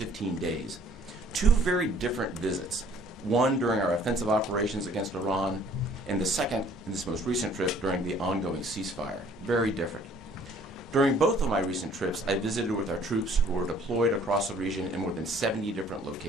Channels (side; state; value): both; normal; correlation 0.57